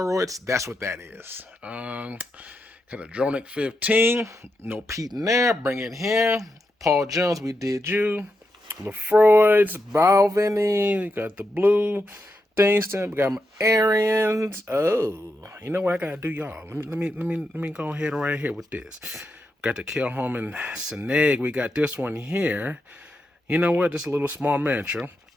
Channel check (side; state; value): both; normal; correlation 0.85